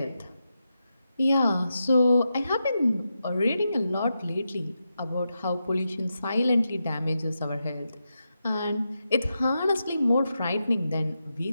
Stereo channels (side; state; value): both; inverted; correlation -0.88